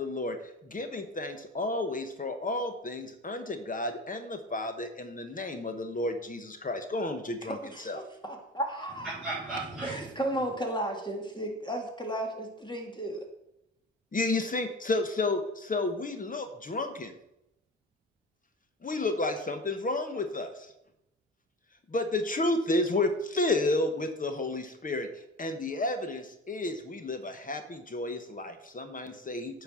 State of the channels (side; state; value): both; normal; correlation 0.34